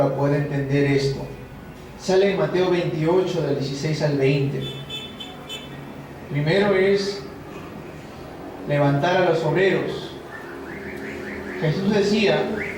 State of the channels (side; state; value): both; identical; correlation 1.00